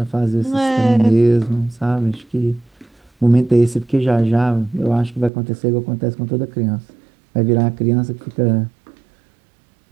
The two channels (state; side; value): drops out; left; at 5.3 s